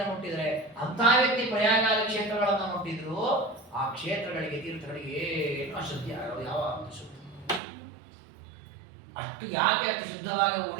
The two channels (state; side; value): drops out; left; at 7.6 s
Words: ಮುಟ್ಟಿದ್ರೆ, ಅಂತಹ ವ್ಯಕ್ತಿ ಪ್ರಯಾಗಾದಿ ಕ್ಷೇತ್ರಗಳನ್ನು ಮುಟ್ಟಿದ್ರು, ಆ ಕ್ಷೇತ್ರಗಳಿಗೆ ತೀರ್ಥಗಳಿಗೆ ಏನು ಅಶುದ್ಧಿ ಆಗೋದು, ಯಾವ ಶುದ್ಧ. ಅಷ್ಟು ಯಾಕೆ ಅಷ್ಟು ಶುದ್ಧವಾಗಿ